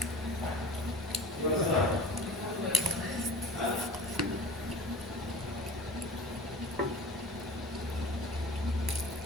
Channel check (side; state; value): both; normal; correlation 0.38